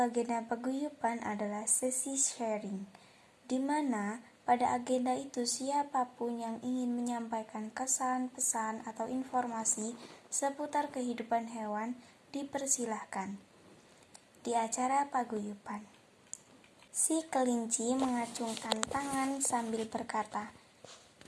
paguyuban adalah sesi sharing, di mana pada agenda itu siapapun yang ingin menyampaikan kesan, pesan, atau informasi seputar kehidupan hewan dipersilahkan. Di acara paguyuban, si kelinci mengacungkan tangan sambil berkata,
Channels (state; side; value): identical; both; correlation 1.00